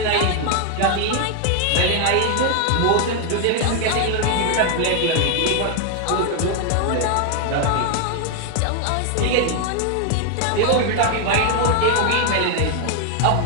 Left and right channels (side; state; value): both; different; correlation 0.00